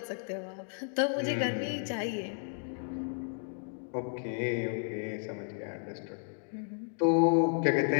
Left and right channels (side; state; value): right; silent; 56 dB below the other